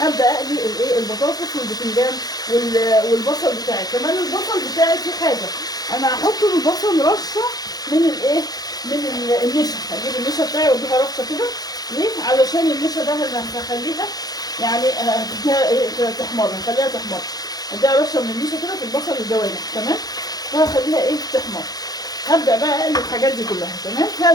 اقلي الايه البطاطس والبتنجان والبصل بتاعي. كمان البصل بتاعي في حاجه، انا هحط البصل رشه من الايه من النشا. هجيب النشا بتاعي واديها رشه كده. ليه؟ علشان النشا ده اللي هخليها يعني تحمر، هخليها تحمر. اديها رشه من النشا كده في البصل الجوانح. تمام، وهخليها ايه تحمر. هبدا بقى اقلب الحاجات دي كلها. تمام،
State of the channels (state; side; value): late; right; 0.19 ms